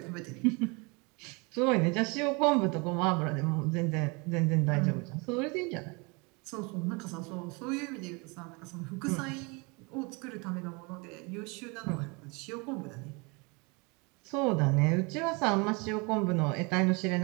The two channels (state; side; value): quieter; left; 29.4 dB